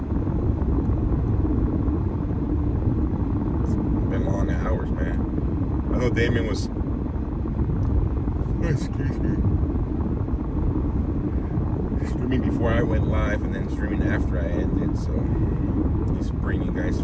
It's been long hours, man. I know Damien was, excuse me, streaming before I went live and then streaming after I ended, so he's bringing you guys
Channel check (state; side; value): identical; both; correlation 1.00